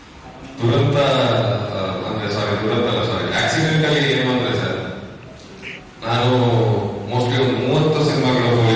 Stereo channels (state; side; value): identical; both; correlation 1.00